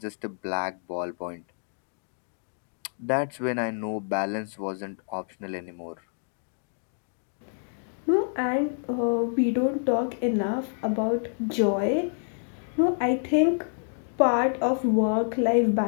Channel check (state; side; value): silent; right; digital silence